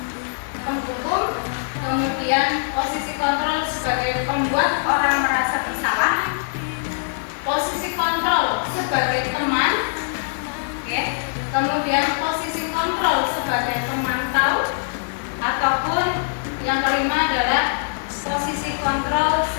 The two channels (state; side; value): silent; right; digital silence